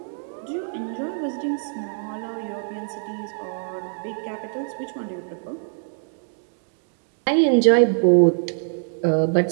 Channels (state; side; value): silent; left; digital silence